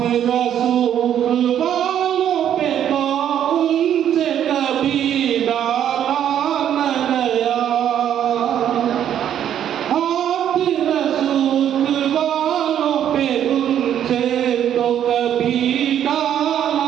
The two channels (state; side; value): quieter; left; 10.0 dB